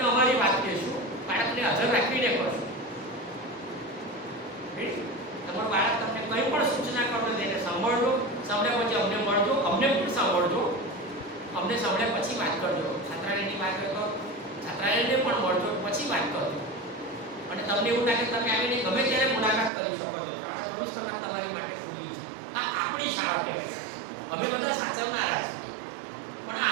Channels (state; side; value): drops out; left; at 19.7 s